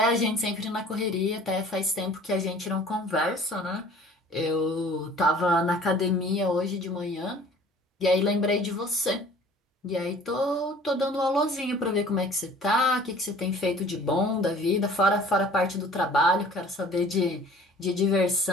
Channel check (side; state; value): both; normal; correlation 0.49